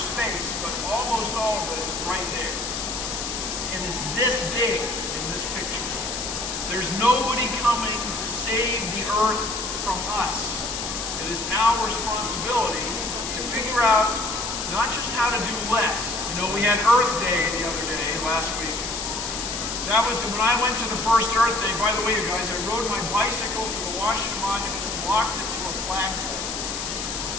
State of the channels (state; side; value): noise; left; hiss, 4 dB below the sound